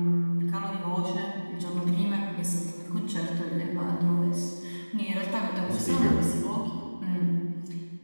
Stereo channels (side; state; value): both; inverted; correlation -1.00